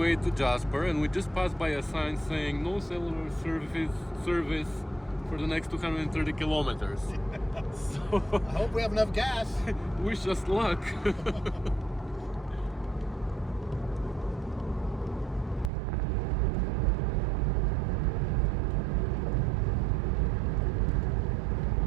to Jasper, and we just passed by a sign saying no cellular service for the next 230 kilometers. So I hope we have enough gas. wish us luck.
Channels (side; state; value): left; drops out; at 15.7 s